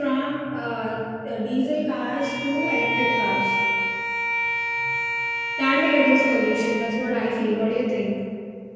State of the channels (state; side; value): identical; both; correlation 1.00